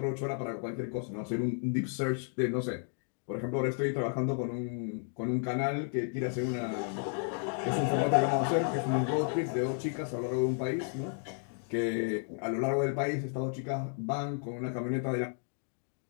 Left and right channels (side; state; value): right; silent; 56 dB below the other